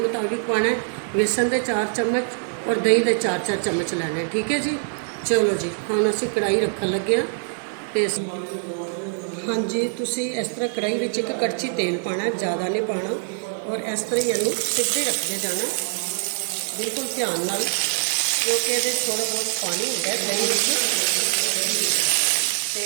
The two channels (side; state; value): left; silent; digital silence